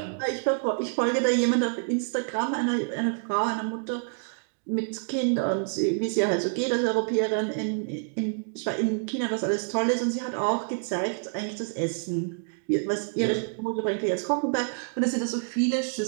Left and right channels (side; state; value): left; silent; 60 dB below the other